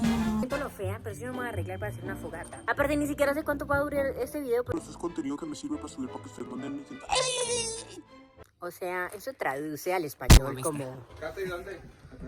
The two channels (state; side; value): identical; both; correlation 1.00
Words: Siento lo fea, pero sí me voy a arreglar para hacer una fogata. Aparte, ni siquiera sé cuánto va a durar este video. Pero eso es contenido que me sirve para subir para que ustedes manden. O sea, eso traduce al español como... Cata, ¿y dónde? ¿Le